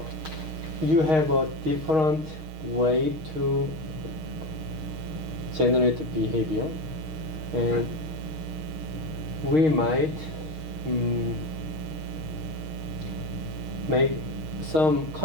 have a different way to generate behavior, and we might make some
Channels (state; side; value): late; left; 6.4 ms